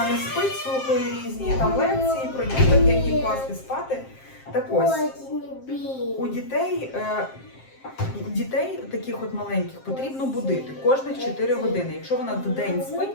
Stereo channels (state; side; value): late; right; 7.6 ms